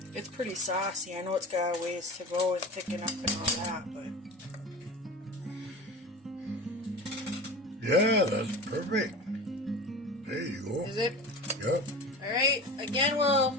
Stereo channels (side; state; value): both; normal; correlation 0.33